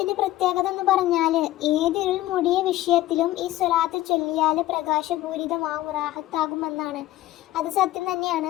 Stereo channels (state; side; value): quieter; right; 15.6 dB